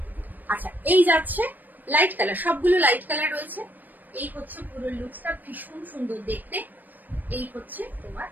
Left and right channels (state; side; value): late; left; 0.087 ms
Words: আচ্ছা, এই যাচ্ছে লাইট কালার, সবগুলো লাইট কালার রয়েছে। এই হচ্ছে পুরো লুকসটা, ভীষণ সুন্দর দেখতে। এই হচ্ছে তোমার